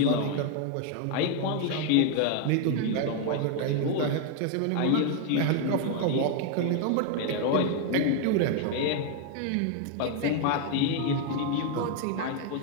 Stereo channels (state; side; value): different; both; correlation 0.01